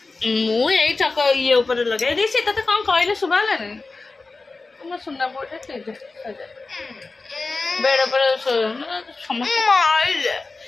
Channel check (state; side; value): quieter; right; 3.7 dB